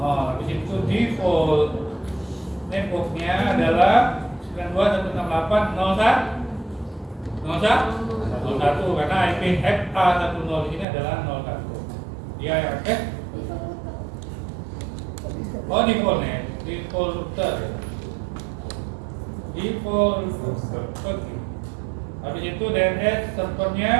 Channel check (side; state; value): left; drops out; at 10.9 s